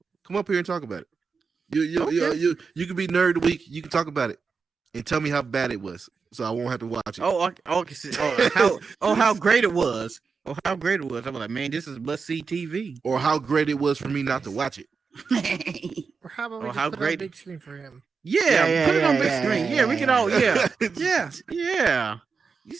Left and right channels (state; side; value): quieter; left; 5.2 dB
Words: come up here and talk about it. You can be nerd of the week. You can talk about it and tell me how bad it was, so I won't have to watch it. How great it was. Oh, how great it was. I'm like, man, this is must-see TV. Or how great it was for me not to watch it. Or how about we just put it on big screen for him? Yeah, put it on big screen. Yeah, we can all. Yeah.